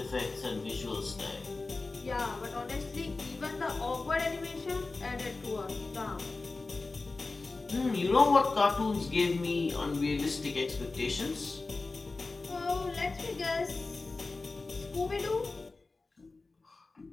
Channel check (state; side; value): quieter; right; 3.6 dB